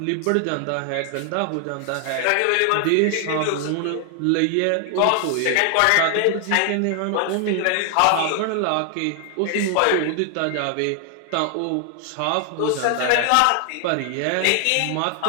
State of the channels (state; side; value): different; both; correlation 0.00